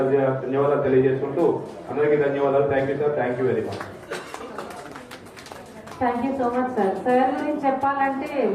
ధన్యవాదాలు తెలియజేసుకుంటూ అందరికీ ధన్యవాదాలు. Thank you sir. Thank you very much. Thank you so much sir. Sir గురించి చెప్పాలంటే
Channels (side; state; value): both; identical; correlation 1.00